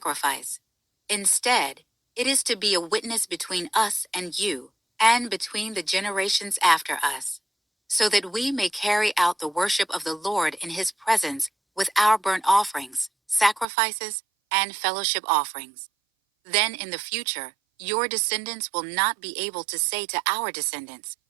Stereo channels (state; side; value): drops out; left; at 13.7 s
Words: Instead, it is to be a witness between us and you, and between the generations after us, so that we may carry out the worship of the Lord in his presence with our burnt offerings, sacrifices, and fellowship offerings. Then in the future, your descendants will not be able to say to our descendants,